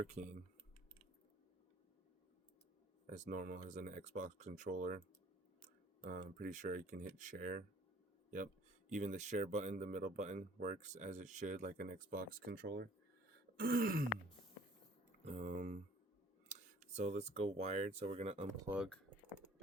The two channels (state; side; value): normal; both; correlation 0.54